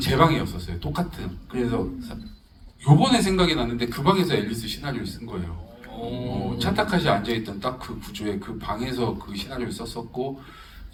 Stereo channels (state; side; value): identical; both; correlation 1.00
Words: 방이었었어요. 똑같은. 그래서 요번에 생각이 났는데 그 방에서 앨리스 시나리오를 쓴 거예요. 차타카시 앉아있던 딱 그 구조에 그 방에서 그 시나리오를 썼었고